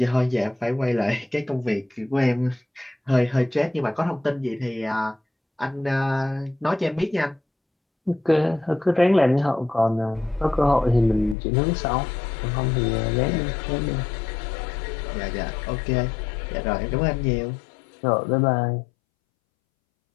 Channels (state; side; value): drops out; right; at 11.4 s